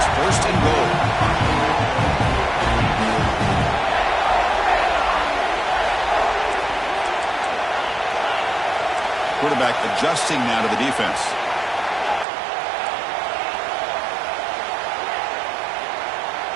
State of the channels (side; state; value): left; drops out; at 12.2 s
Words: 1st and goal. Quarterback adjusting now to the defense.